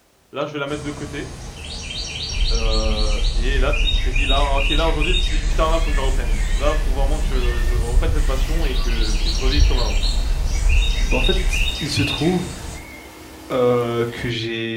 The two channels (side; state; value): both; identical; correlation 1.00